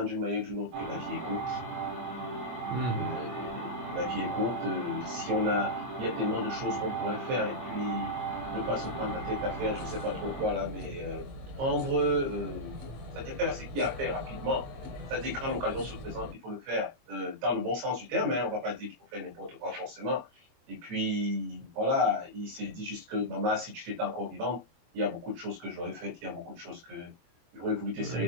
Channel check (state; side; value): late; left; 24 ms